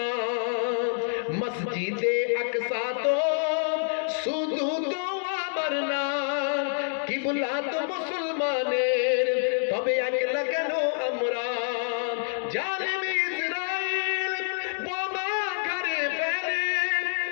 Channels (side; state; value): right; silent; 60 dB below the other